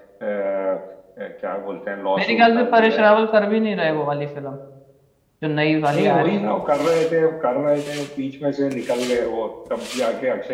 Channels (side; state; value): both; identical; correlation 1.00